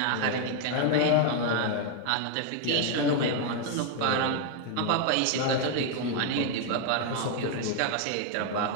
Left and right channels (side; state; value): both; different; correlation 0.00